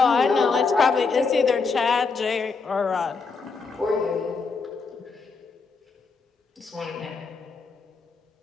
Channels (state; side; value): quieter; right; 4.6 dB